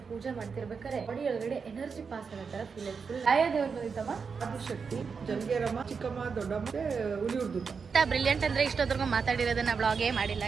ಪೂಜೆ ಮಾಡ್ತಿರ್ಬೇಕಾದ್ರೆ ಬಾಡಿ ಒಳಗಡೆ ಎನರ್ಜಿ ಪಾಸ್ ಆಗೋ ತರ ಫೀಲ್ ಆಯ್ತು. ಫುಲ್ ಆಯಾ ದೇವ್ರು ಬಂದಿತ್ತಮ್ಮ, ಆದಿಶಕ್ತಿ, ಜಲ್ಗೇರಮ್ಮ, ಚಿಕ್ಕಮ್ಮ, ದೊಡ್ಡಮ್ಮ, ಹುಲಿಯುರ್ದು. ಬ್ರಿಲಿಯಂಟ್ ಅಂದ್ರೆ ಇಷ್ಟೊತ್ತರ್ಗು ಮಾತಾಡಿರೋದನ್ನ ಬ್ಲಾಗೇ ಮಾಡಿಲ್ಲ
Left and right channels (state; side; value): quieter; left; 5.6 dB